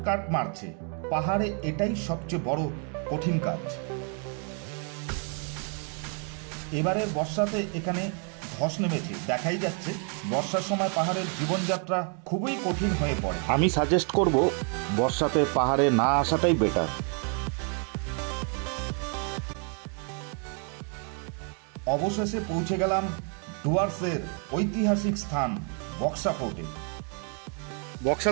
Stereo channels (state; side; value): quieter; left; 39.7 dB